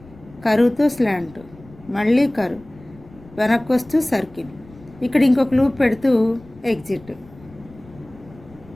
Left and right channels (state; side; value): noise; left; rumble, 23 dB below the sound